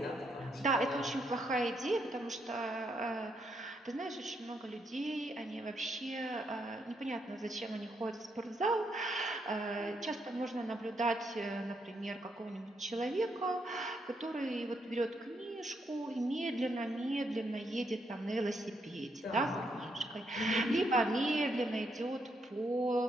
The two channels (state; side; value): normal; both; correlation 0.77